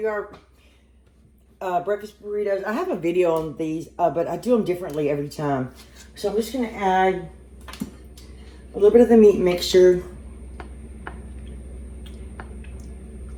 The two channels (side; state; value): both; identical; correlation 1.00